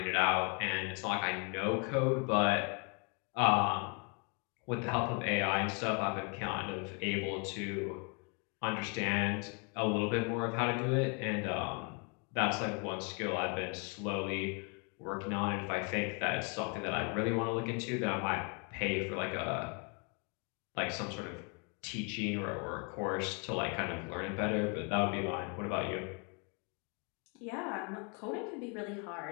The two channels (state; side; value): quieter; right; 35.6 dB